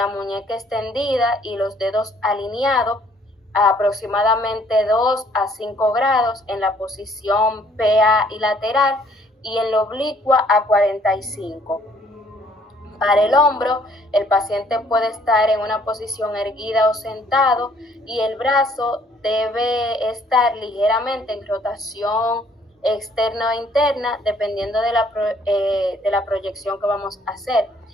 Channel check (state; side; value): normal; both; correlation 0.62